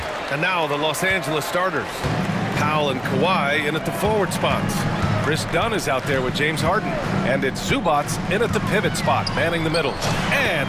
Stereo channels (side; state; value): both; identical; correlation 1.00